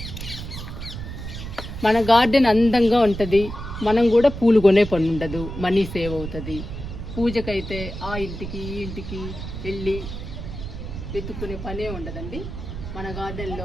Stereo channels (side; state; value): right; noise; rumble, 8 dB below the sound